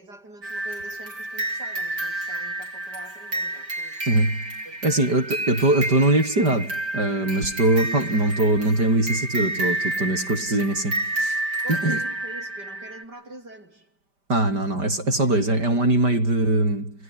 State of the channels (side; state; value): left; late; 5.1 ms